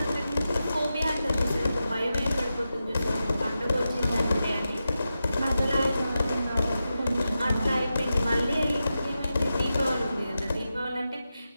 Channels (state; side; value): inverted; both; correlation -0.91